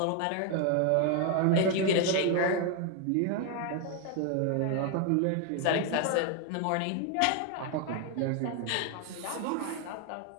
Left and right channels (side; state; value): both; different; correlation 0.01